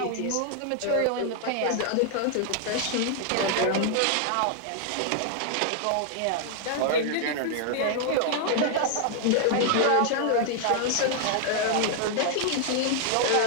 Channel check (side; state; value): both; different; correlation 0.00